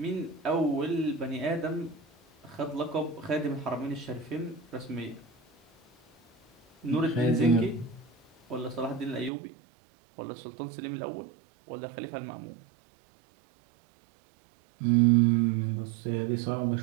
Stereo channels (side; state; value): left; drops out; at 9.3 s